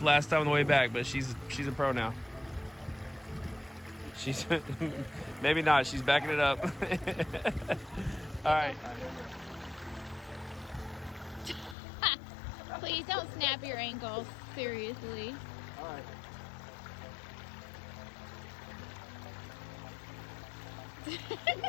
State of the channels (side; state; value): right; drops out; at 11.8 s